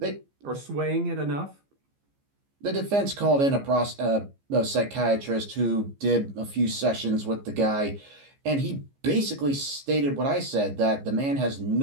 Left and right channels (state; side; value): late; left; 15 ms